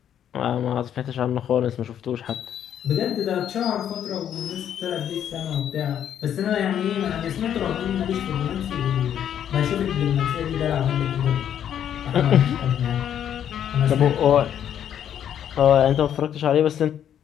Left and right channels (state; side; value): quieter; right; 9.7 dB